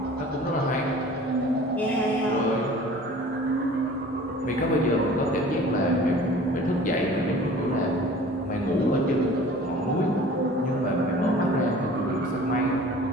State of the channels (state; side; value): normal; both; correlation 0.45